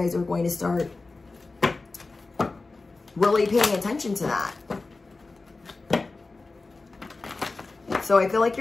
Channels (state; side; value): quieter; right; 3.6 dB